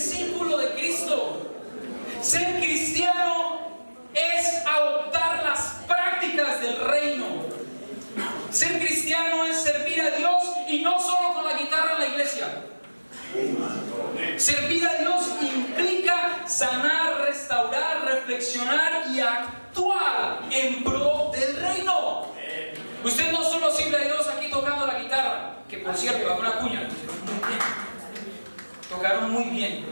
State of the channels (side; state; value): both; inverted; correlation -1.00